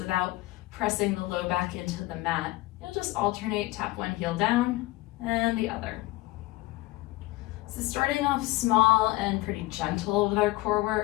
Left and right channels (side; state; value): right; quieter; 18.9 dB